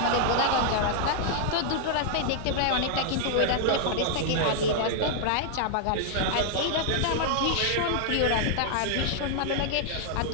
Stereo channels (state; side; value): different; both; correlation -0.01